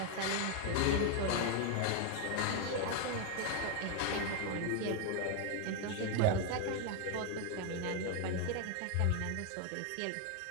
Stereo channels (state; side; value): different; both; correlation 0.01